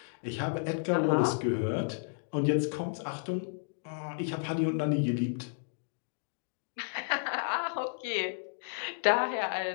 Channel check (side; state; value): right; silent; digital silence